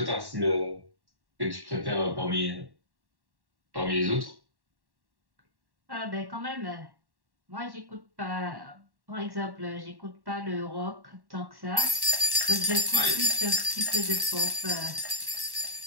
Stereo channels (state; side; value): late; left; 1.1 ms